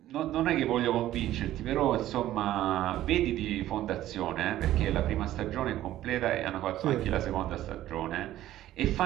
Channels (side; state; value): left; quieter; 13.7 dB